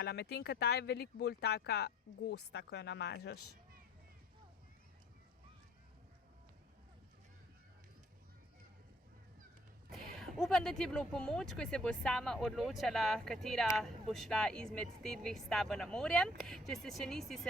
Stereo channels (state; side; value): normal; both; correlation 0.59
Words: medtem ko ta je veliko bolj taka gosta, ko jo namažeš. Upam, da ti je bilo v pomoč, ko se bo sama odločala, katera bo šla izmed te dveh s tabo na morje. Če se še nisi,